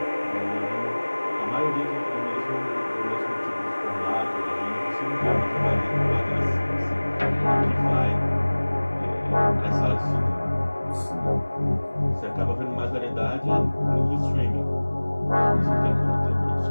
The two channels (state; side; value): inverted; both; correlation -1.00